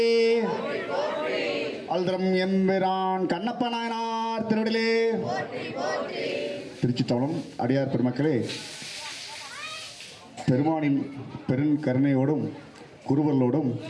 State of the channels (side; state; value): both; identical; correlation 1.00